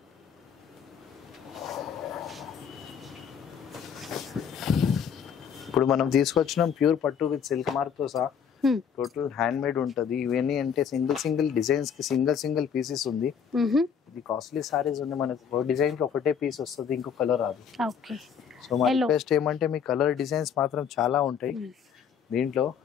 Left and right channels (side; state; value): right; quieter; 7.4 dB